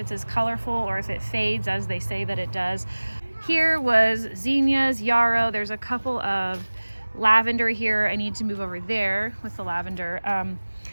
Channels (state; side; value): inverted; both; correlation -1.00